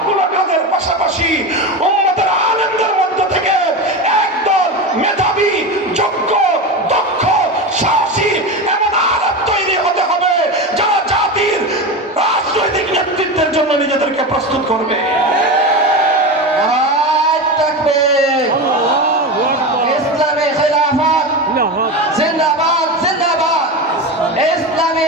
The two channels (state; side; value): normal; both; correlation 0.22